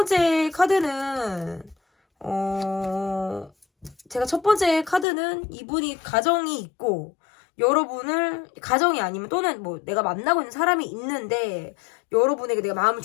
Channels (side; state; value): right; drops out; at 5.1 s